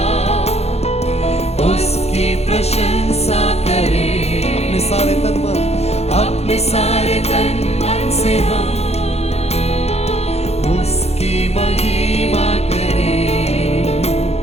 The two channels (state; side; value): late; right; 0.31 ms